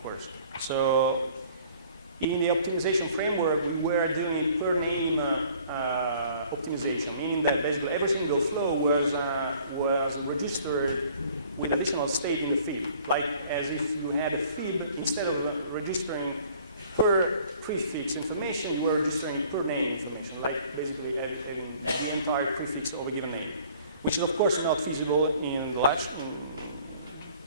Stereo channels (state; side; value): inverted; both; correlation -0.55